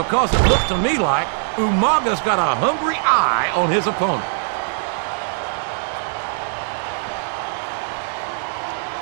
it looks to me like Umaga's got a hungry eye on his opponent.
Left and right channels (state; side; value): silent; left; digital silence